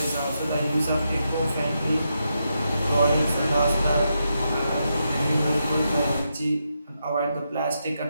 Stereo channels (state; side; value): inverted; both; correlation -0.84